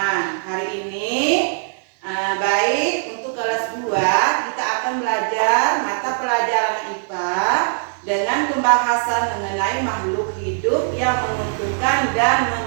Hari ini baik untuk kelas 2 kita akan belajar mata pelajaran IPA dengan pembahasan mengenai makhluk hidup yang menguntungkan dan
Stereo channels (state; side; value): silent; left; digital silence